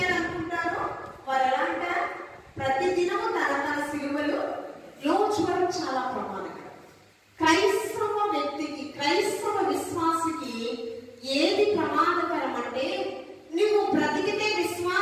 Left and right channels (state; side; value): identical; both; correlation 1.00